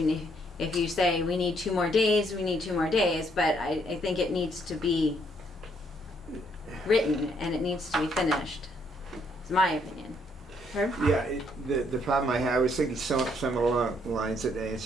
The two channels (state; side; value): normal; both; correlation 0.70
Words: mean, if you say we need 2 more days, we need 2 more days, but I think it needs to be written and it needs to be finished. It's my opinion. Herb? Yeah, the problem I had, I was thinking some along the lines that